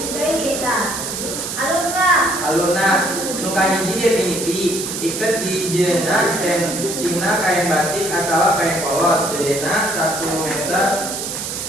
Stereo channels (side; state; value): right; noise; hiss, 5 dB below the sound